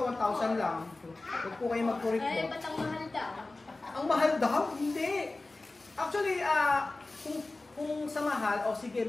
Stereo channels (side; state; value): right; quieter; 3.1 dB